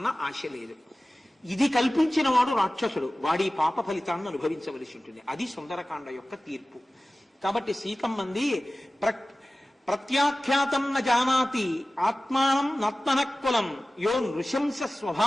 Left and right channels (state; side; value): normal; both; correlation 0.97